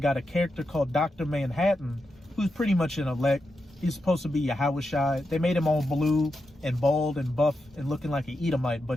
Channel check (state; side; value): normal; both; correlation 0.87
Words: a character called Dr. Manhattan, who's pretty much an elect. He's supposed to be Yahushai. They made him all blue and bald and buff and looking like an Edomite,